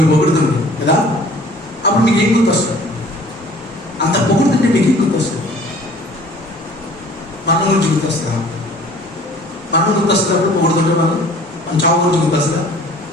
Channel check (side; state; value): both; normal; correlation 0.50